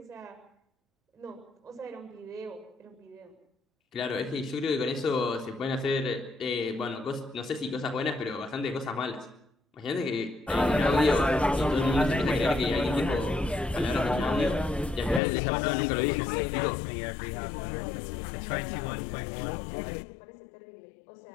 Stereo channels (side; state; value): right; drops out; at 15.2 s